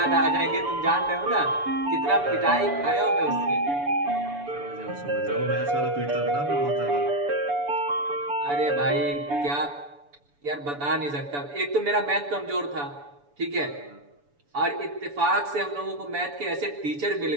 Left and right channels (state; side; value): late; left; 7.0 ms